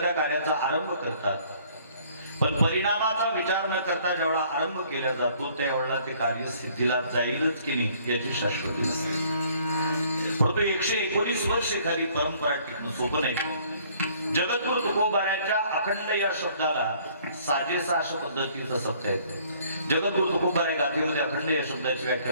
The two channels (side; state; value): both; inverted; correlation -0.59